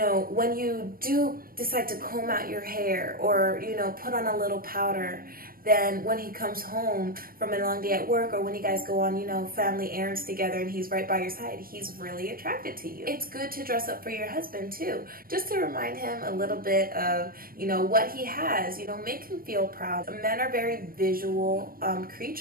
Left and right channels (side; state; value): left; late; 0.42 ms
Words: when you do decide to comb out your hair or, you know, put on a little powder, then when he comes home from a long day at work, or when you guys go on, you know, family errands together and he's right by your side, he's really attracted to you. It's good to dress up for your husband too, just to remind him a little bit of, you know, what he has, you know, make him feel proud. Men are very visual